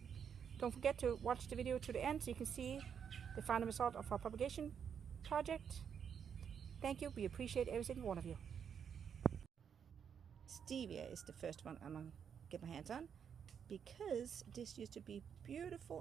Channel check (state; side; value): quieter; left; 7.6 dB